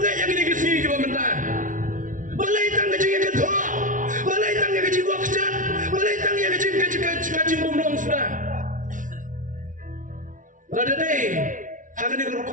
yang gini kesini ke pemerintah. Balai tang kacing yang ketua. Balai tang yang kacing wakjat. Balai tang yang kacing pemlong sudah. Lada deh. Hakan ni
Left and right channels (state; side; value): late; left; 0.38 ms